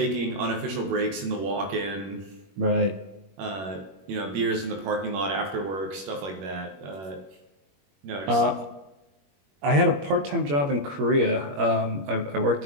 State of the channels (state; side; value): late; left; 21 ms